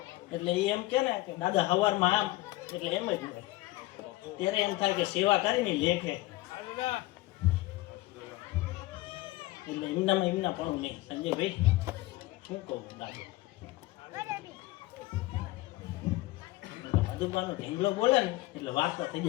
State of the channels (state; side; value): quieter; right; 18.9 dB